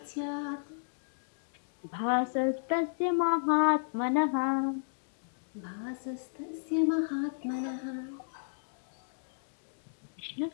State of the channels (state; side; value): silent; right; digital silence